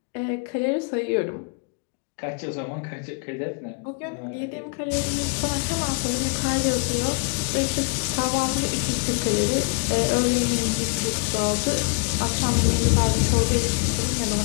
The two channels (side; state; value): right; quieter; 36.3 dB